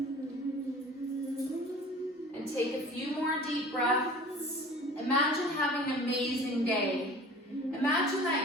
And take a few more deep breaths. Imagine having an amazing day. Imagine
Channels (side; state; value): both; normal; correlation 0.44